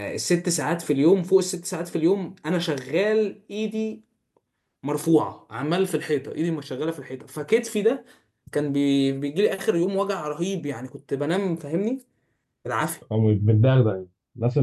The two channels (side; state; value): both; identical; correlation 1.00